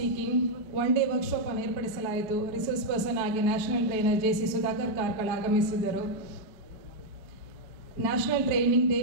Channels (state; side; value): late; left; 5.3 ms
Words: 1 day workshop ಅನ್ನು ಏರ್ಪಡಿಸಲಾಯಿತು. ರಿಸೋರ್ಸ್ ಪರ್ಸನ್ ಆಗಿ national trainer JC Sudhakar Karkala ಆಗಮಿಸಿದ್ದರು. ನ್ಯಾಷನಲ್ ಟ್ರೈನಿಂಗ್ ಡೇ